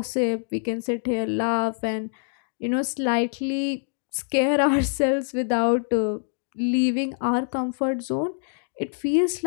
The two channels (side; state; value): right; silent; digital silence